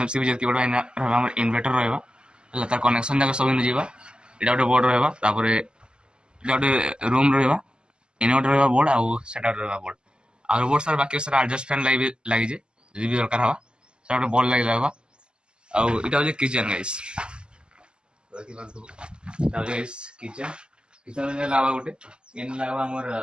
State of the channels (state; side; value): late; left; 0.049 ms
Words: भी जति बडा हमर इन्वर्टर रहबा हला तार कनेक्शन जाक सब जीवा एटा गोटे बोर्ड रहबा तापर एटा गोटे रूम रहबा इन्वर्टर रहबा बोर्ड आउ सेटा रहबा बोर्ड आ बोर्ड सार बाकी सारा एडजस्ट फैन लागि जे जदी भी दरकार हवा सेटा गोटे बोर्ड लागि रहबा आउ एटा हो किचन गाइस। देखि बांधो एटा हो गाइस किचन में लावा गोटे इन लावा हमर